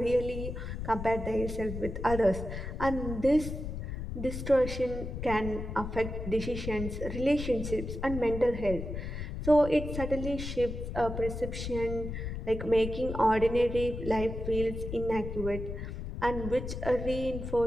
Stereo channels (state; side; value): noise; left; rumble, 6 dB below the sound